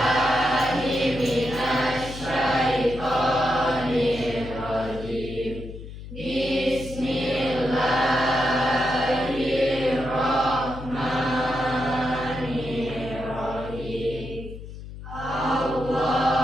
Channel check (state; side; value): noise; left; hum, 12 dB below the sound